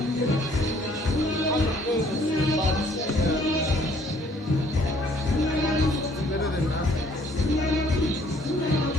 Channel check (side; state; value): both; normal; correlation 0.61